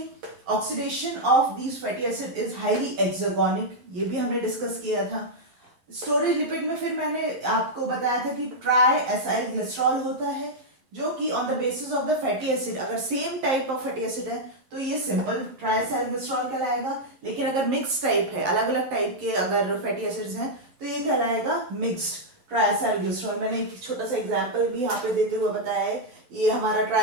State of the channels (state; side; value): late; left; 11 ms